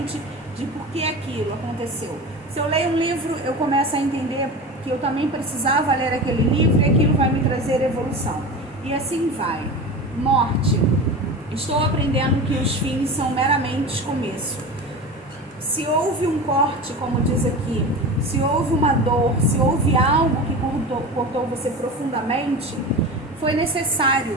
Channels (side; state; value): both; normal; correlation 0.30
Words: de por que aquilo aconteceu. Se eu leio um livro, eu começo a entender que eu também precisava ler aquele livro e aquilo vai me trazer evolução. E assim vai. Morte. Estou aprendendo que os fins são meramente começo. Se houve um corte, como diz aqui, se houve uma dor, se houve algo que cortou você profundamente, foi